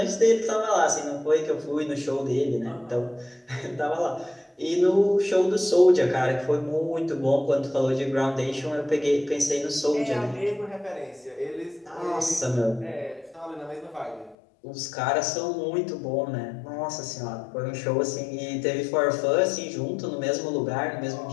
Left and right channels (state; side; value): drops out; right; at 14.4 s